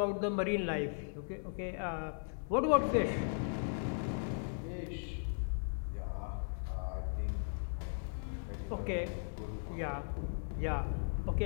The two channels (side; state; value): right; silent; digital silence